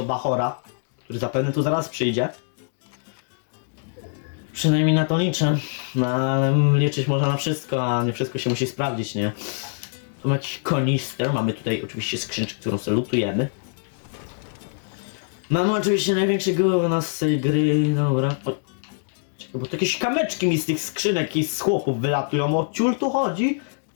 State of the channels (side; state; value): right; silent; digital silence